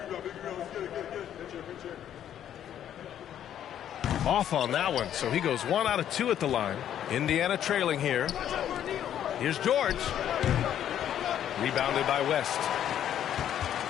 Off on that one, so he goes 1 out of 2 at the line. Indiana trailing here. Here's George. Rebounded by West.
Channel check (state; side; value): quieter; right; 10.4 dB